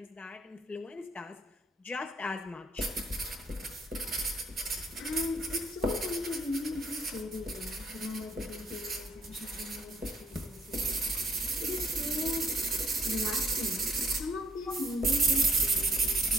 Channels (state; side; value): normal; both; correlation 0.68